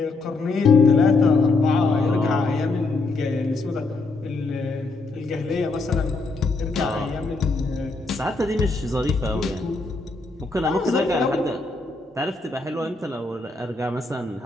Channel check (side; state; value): right; quieter; 3.5 dB